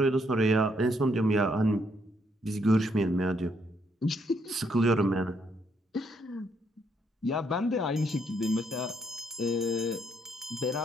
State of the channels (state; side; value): normal; both; correlation 0.73